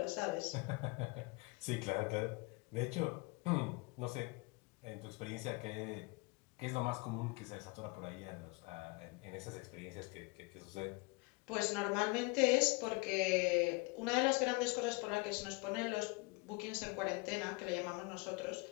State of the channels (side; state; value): right; quieter; 27.3 dB